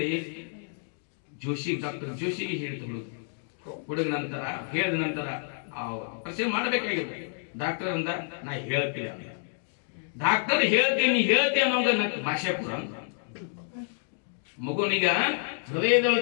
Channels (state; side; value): silent; right; 59 dB below the other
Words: ಡಾಕ್ಟರ್ ಜೋಶಿಗೆ ಹೇಳ್ತಿದ್ರು. ಹುಡುಗ ನಂತರ ಹೇಳಿದ ನಂತರ ಆಪರೇಷನ್ ಮಾಡಬೇಕಾಗಿದೆ. ಡಾಕ್ಟರ್ ಅಂದ, ನಾ ಹೇಳ್ತೀನಿ ಅಂದ. ಡಾಕ್ಟರ್ ಹೇಳ್ತೀನಿ ಅನ್ನೋದು ನನ್ನ ಭಾಷೆ ಕೂಡ ಅಂತ. ಮಗುನಿಗ